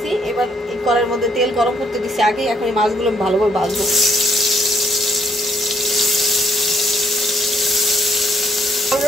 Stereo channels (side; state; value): both; normal; correlation 0.70